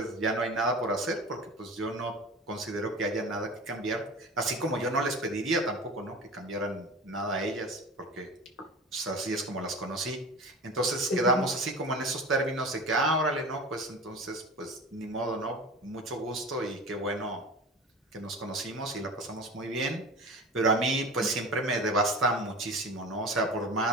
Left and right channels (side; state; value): both; normal; correlation 0.34